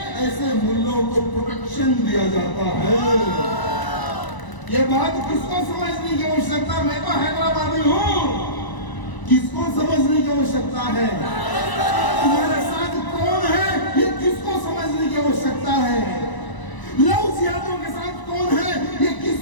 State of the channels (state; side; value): late; right; 1.0 ms